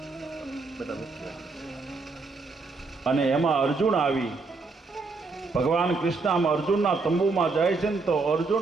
અને એમાં અર્જુન આવી ભગવાન કૃષ્ણ આમ અર્જુનના તંબુમાં જાય છે ને તો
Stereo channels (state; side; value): quieter; left; 4.0 dB